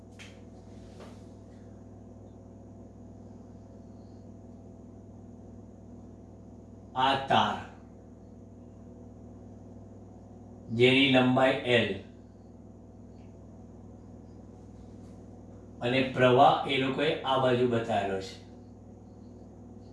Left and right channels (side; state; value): both; identical; correlation 1.00